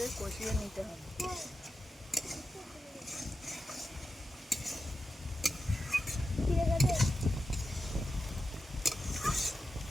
কষিয়ে নিতে হবে।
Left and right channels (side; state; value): both; normal; correlation 0.90